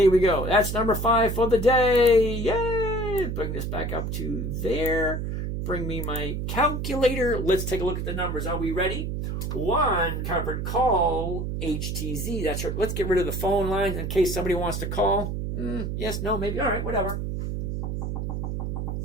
we go. That's number 5 for the day. Yay! Bring this back up to there. Bring me my calculator. Let's take a look at the numbers. Are we ready? 1 covered call, HTZ. That's right. Let's get rid of the phone lines in case somebody wants to call. Yes, no, maybe. All right, whatever.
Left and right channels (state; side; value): noise; right; hum, 3 dB below the sound